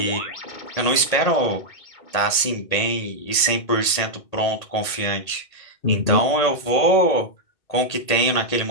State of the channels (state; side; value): late; right; 1.8 ms